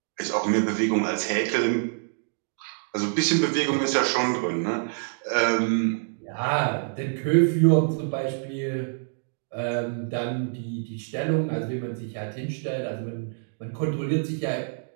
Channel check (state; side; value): silent; left; digital silence